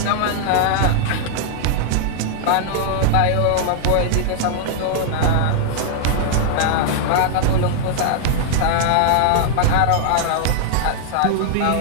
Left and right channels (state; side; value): different; both; correlation -0.01